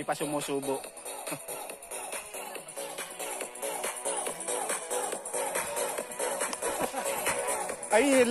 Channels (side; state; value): both; identical; correlation 1.00